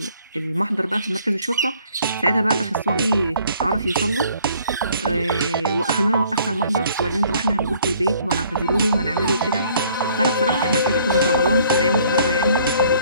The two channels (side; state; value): both; inverted; correlation -0.59